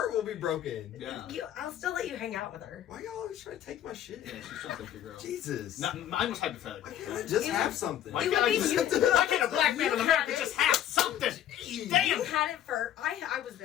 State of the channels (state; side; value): quieter; right; 11.1 dB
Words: will be broken. Yeah. I'll still let you hang out with her. Why y'all always trying to take my shit? Yeah, she's trying to take your girl. Jesus. Mine was hypothetical. Why can't I just You- have something? Why You can't, would be- why can't a black man in America just have something? Damn. You had it first. I was